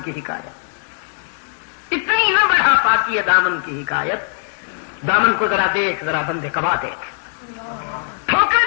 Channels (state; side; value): silent; right; digital silence